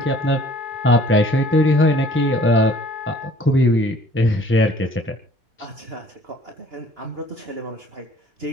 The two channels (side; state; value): both; normal; correlation 0.54